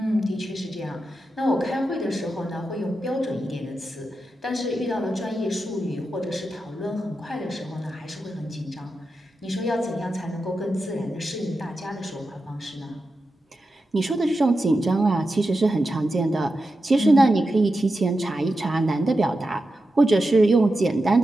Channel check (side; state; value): both; normal; correlation 0.90